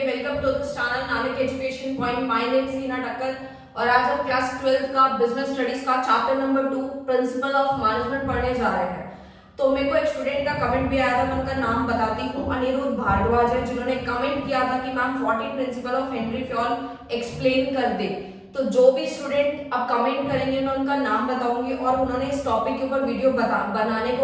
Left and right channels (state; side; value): identical; both; correlation 1.00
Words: Welcome to this channel Nanak education point. My name is Heena Takkar और आज हम क्लास 12 का बिजनेस स्टडीज का chapter number 2 principle of management पढ़ने जा रहे हैं। तो मेरे को एक स्टूडेंट का कमेंट भी आया था, मैं उनका नाम बताती हूँ। अनिरुद्ध भारद्वाज है, जिन्होंने कमेंट किया था कि ma'am 14 principle of Henry Fayol explain कर दे। तो जो भी स्टूडेंट अब कमेंट करेंगे मैं उनका नाम बताऊंगी और उन्होंने इस टॉपिक के ऊपर वीडियो बनाने